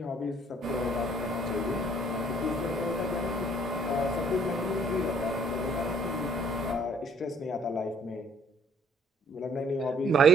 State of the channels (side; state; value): both; normal; correlation 0.61